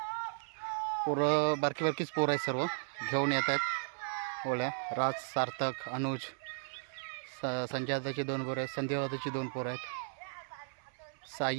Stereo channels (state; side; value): silent; left; 54 dB below the other